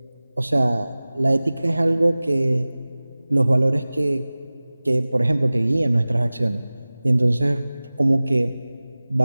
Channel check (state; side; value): inverted; both; correlation -0.99